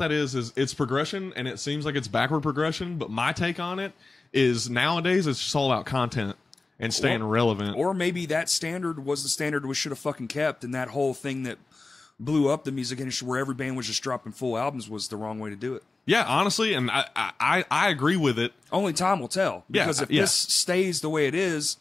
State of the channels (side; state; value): right; quieter; 3.5 dB